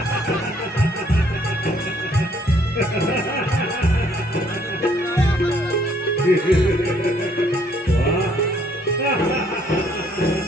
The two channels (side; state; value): both; normal; correlation 0.65